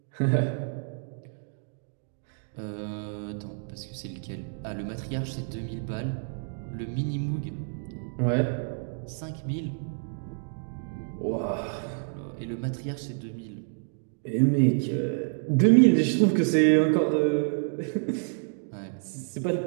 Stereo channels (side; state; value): left; silent; 59 dB below the other